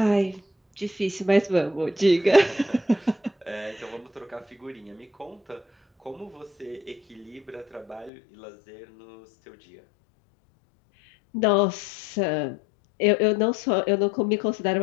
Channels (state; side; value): drops out; right; at 8.1 s